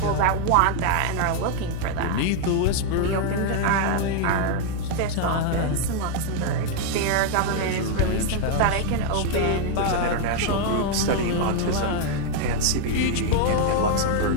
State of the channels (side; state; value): both; different; correlation 0.00